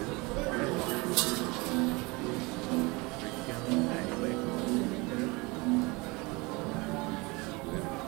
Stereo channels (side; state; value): left; quieter; 25.3 dB